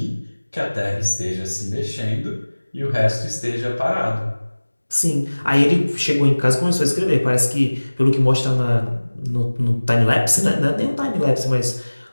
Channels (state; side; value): inverted; both; correlation -1.00